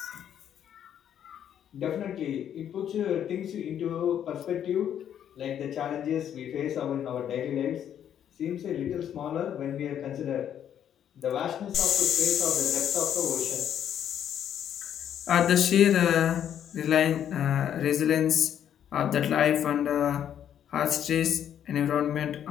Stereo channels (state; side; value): quieter; right; 9.7 dB